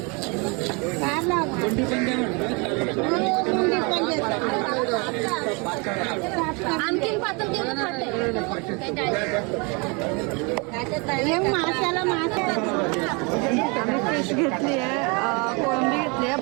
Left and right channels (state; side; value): quieter; left; 30.8 dB